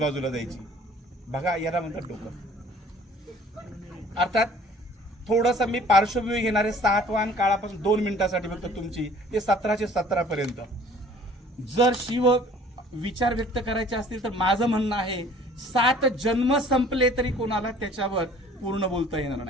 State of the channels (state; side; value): normal; both; correlation 0.52